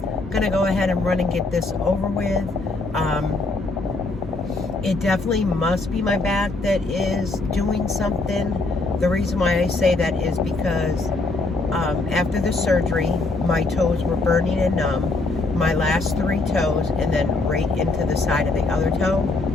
I'm gonna go ahead and run and get this over with. It definitely must be my back that is doing something. The reason why I say that is because after the surgery, my toes were burning and numb, my last 3 toes, and then right into the side of the other toe.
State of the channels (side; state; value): right; quieter; 3.4 dB